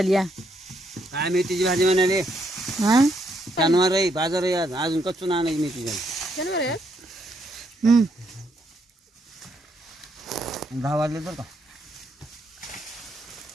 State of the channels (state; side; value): normal; both; correlation 0.75